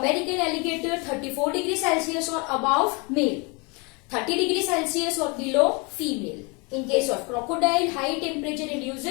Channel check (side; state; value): right; quieter; 30.0 dB